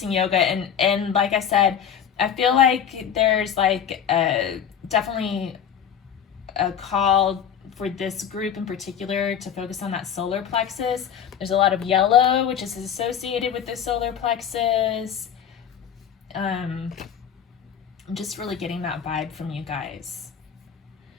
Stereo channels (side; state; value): right; quieter; 8.4 dB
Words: yoga, and like I said, I feel like there's like definitely a call for this group in particular to focus on that solar plexus. There's a lot of yellow, which is associated with the solar plexus. I'm just really getting that vibe from you guys.